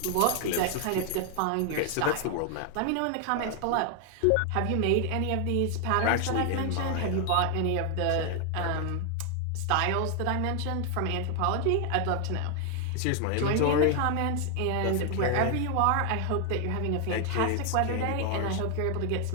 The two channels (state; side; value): different; both; correlation 0.00